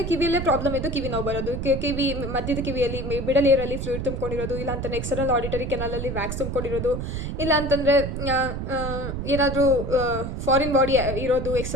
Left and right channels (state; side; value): noise; right; rumble, 4 dB below the sound